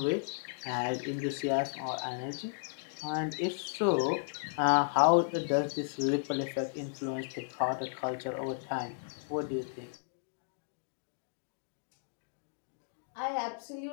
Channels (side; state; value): right; silent; digital silence